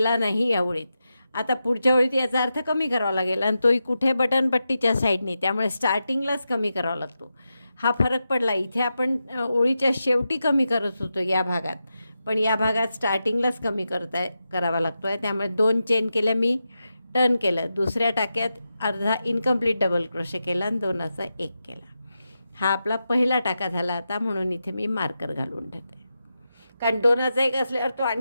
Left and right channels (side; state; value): both; inverted; correlation -0.89